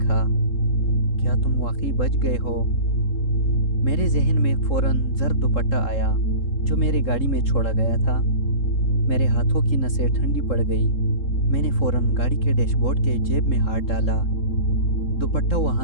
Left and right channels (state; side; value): late; right; 3.7 ms